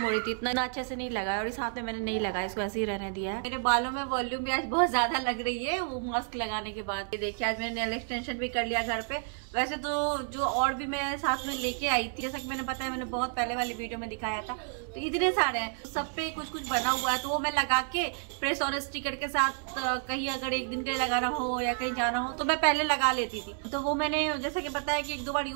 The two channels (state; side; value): silent; left; 58 dB below the other